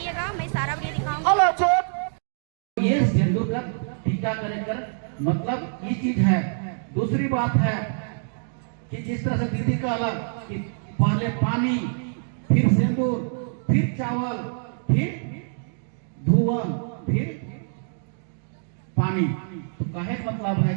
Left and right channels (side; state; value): left; silent; digital silence